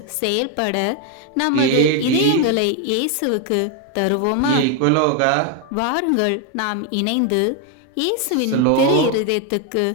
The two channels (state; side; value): different; both; correlation 0.01